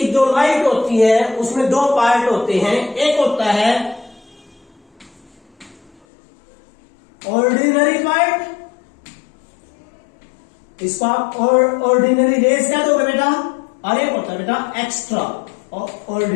जो लाइट होती है उसमें दो पार्ट होते हैं। एक होता है ऑर्डिनरी पार्ट, इसको आप ऑर्डिनरी रेज क्या दोगे बेटा? और एक होता है बेटा एक्स्ट्रा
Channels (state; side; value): drops out; right; at 6.0 s